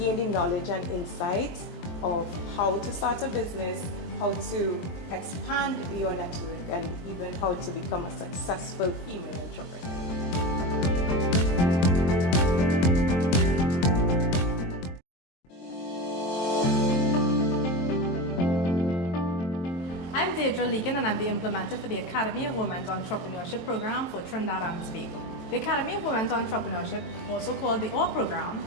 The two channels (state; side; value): late; right; 23 ms